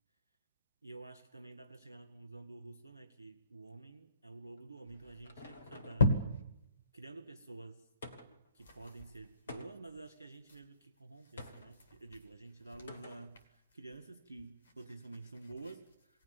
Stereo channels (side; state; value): both; inverted; correlation -0.60